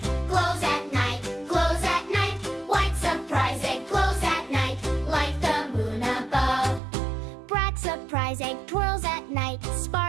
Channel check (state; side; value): drops out; left; at 6.8 s